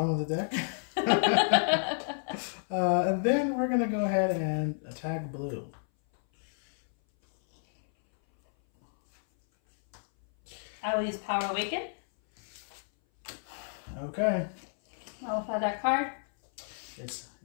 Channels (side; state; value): right; silent; 57 dB below the other